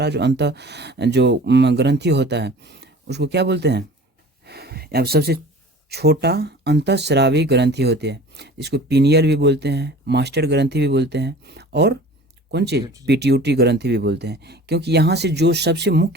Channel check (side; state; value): both; normal; correlation 0.43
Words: जो ग्रंथि होता है उसको क्या बोलते हैं, अब सबसे छोटा अंतःस्रावी ग्रंथि होती है। इसको पीनियल भी बोलते हैं, मास्टर ग्रंथि भी बोलते हैं, और कौन चीज़, पिट्यूटरी ग्रंथि भी बोलते हैं। क्योंकि यहाँ से जो सबसे